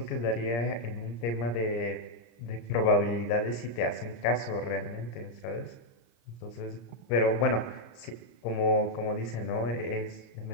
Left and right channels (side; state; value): right; late; 34 ms